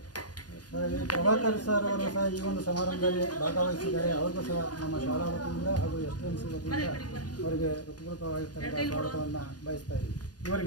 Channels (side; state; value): right; late; 0.69 ms